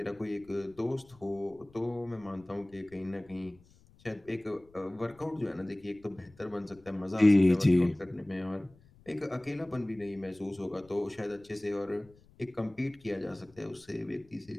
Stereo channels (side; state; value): left; noise; rumble, 27 dB below the sound